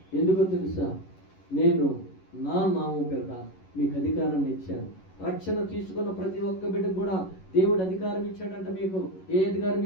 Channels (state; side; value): late; right; 11 ms